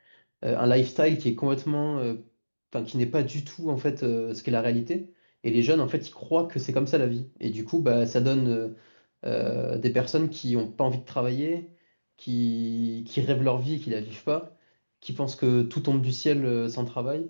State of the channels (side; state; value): both; inverted; correlation -1.00